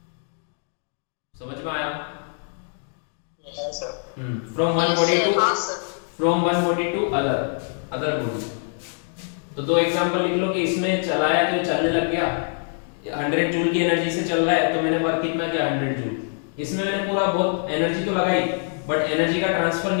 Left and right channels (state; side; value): silent; right; 56 dB below the other